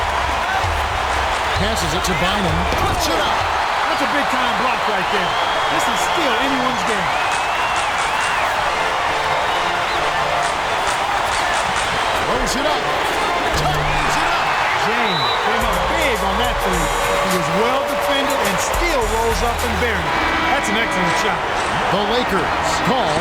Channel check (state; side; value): identical; both; correlation 1.00